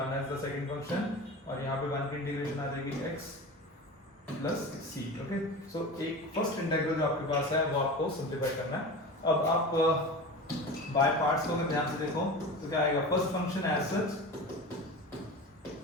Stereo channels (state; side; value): normal; both; correlation 0.31